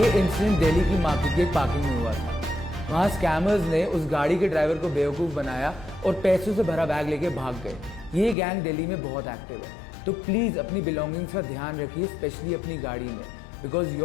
इंसिडेंट दिल्ली की मार्केट के पार्किंग में हुआ था। वहाँ स्कैमर्स ने उस गाड़ी के ड्राइवर को बेवकूफ़ बनाया और पैसों से भरा बैग लेके भाग गए। ये गैंग दिल्ली में बहुत एक्टिव है, तो प्लीज़ अपनी बिलोंगिंग्स का ध्यान रखिए, स्पेशली अपनी गाड़ी में, because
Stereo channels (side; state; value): right; drops out; at 8.3 s